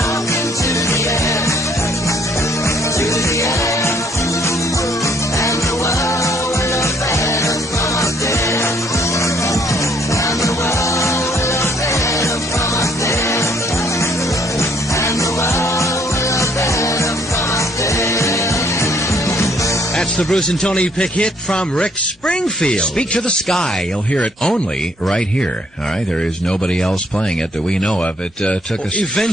to the air. To the air. And the world will look better from up there. And the world will look better from up there. And the world will look better from up there. That's the Bruce and Tony Pick hit from Rick Springfield. Speak to the sky. You'll hear it only right here. All right, there is nobody else playing it that we know of. It took us.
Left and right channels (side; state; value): both; normal; correlation 0.65